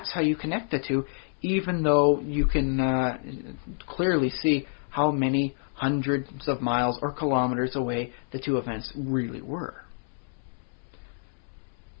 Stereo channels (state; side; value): silent; right; 59 dB below the other